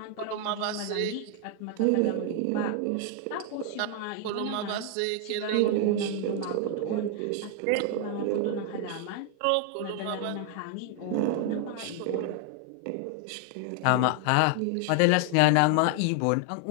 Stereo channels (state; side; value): different; both; correlation 0.00